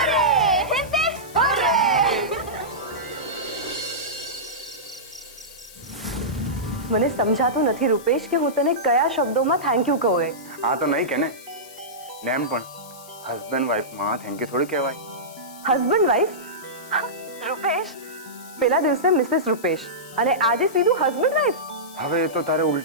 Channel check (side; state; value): left; noise; hiss, 19 dB below the sound